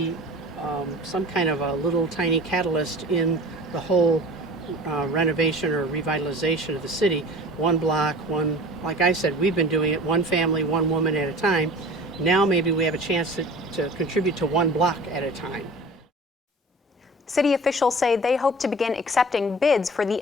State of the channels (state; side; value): normal; both; correlation 0.41